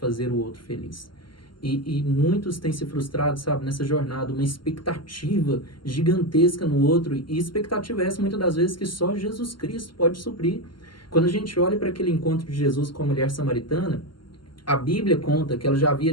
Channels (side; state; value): right; late; 0.72 ms